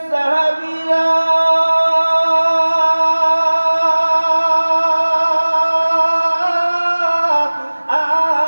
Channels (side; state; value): both; inverted; correlation -1.00